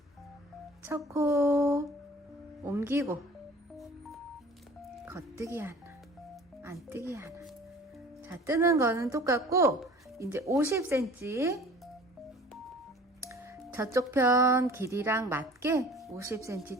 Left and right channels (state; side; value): normal; both; correlation 0.46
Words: 첫 코 옮기고 겉뜨기 하나, 안뜨기 하나. 자, 뜨는 거는 똑같고 이제 50cm 저쪽 편 길이랑 맞게 50cm